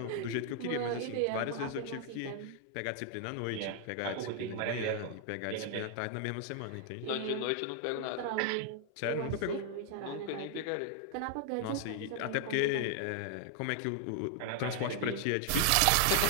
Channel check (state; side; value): different; both; correlation 0.00